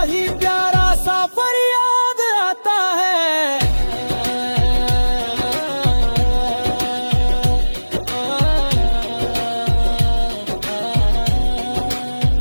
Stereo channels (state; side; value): inverted; both; correlation -1.00